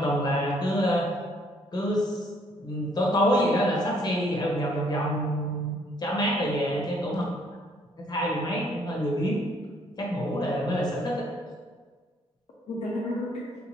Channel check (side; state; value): both; normal; correlation 0.65